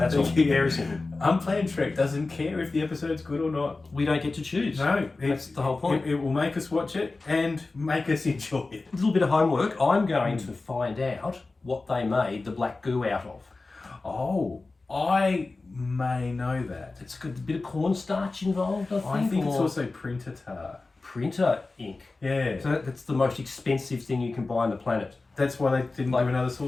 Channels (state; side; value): quieter; right; 3.5 dB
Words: all. Very simple. Unplanned Trek doesn't care if the episode's good or not. We don't get to choose. No, that's the whole point. It will make us watch it and make us enjoy it. A little bit of homework. I'm going to find out what they made the black goo out of. Oh, I may know that. It's got a bit of cornstarch involved, I think. I think it's also printer tar. Printer ink. Yeah. So that's the most expensive thing you can buy on the planet. That's why they didn't do another